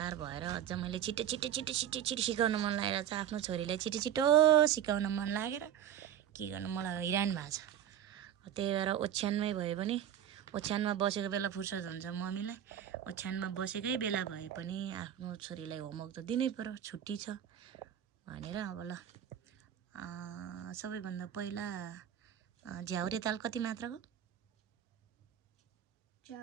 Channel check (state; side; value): quieter; left; 10.2 dB